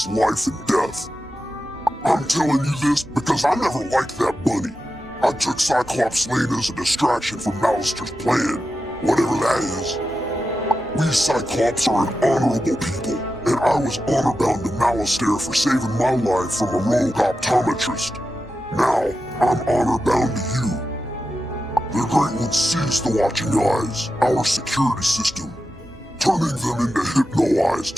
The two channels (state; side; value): normal; both; correlation 0.90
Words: life and death. I'm telling you this because I never liked that bunny. I took Cyclops Lane as a distraction from Malister's plan, whatever that is. We Cyclops are an honorable people, and I was honor-bound to Malister for saving my life from a rogue optometrist. Now, I'm honor-bound to you. The Great One seized the Watching Eyes, our security system, turning them into Hypno-Eyes